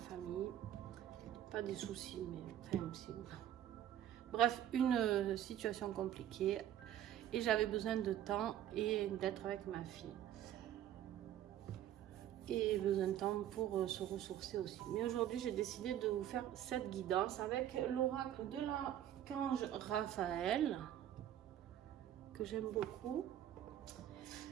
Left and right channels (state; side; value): quieter; left; 11.3 dB